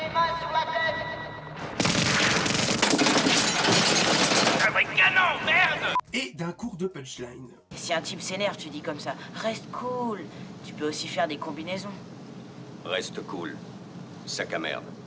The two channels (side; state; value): both; identical; correlation 1.00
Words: mains sur la tête. Un vrai canon, merde! Et d'un cours de punchline. Si un type s'énerve, tu dis comme ça, reste cool. Tu peux aussi faire des combinaisons. Reste cool, sac à merde.